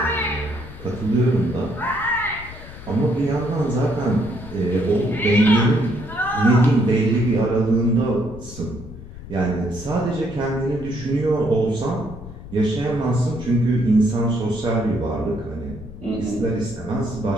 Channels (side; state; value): left; noise; rumble, 14 dB below the sound